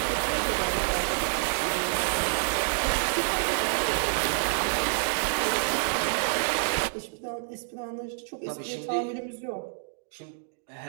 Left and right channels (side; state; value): left; silent; digital silence